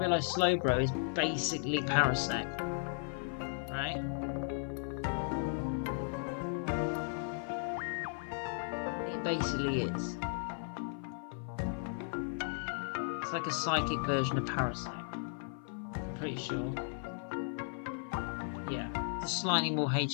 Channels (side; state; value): right; silent; 54 dB below the other